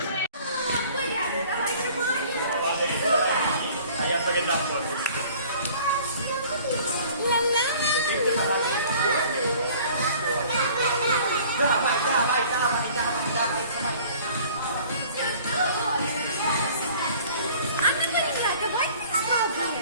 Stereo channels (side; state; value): both; inverted; correlation -0.50